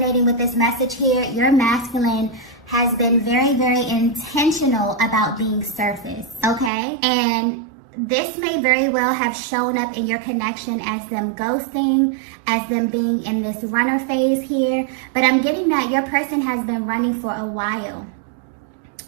with this message here, your masculine has been very intentional about being surface, okay? And this may very well have shown up in your connection as them ghosting, as them being in this runner phase here. But I'm getting that your person has been running for a while.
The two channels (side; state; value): left; drops out; at 6.7 s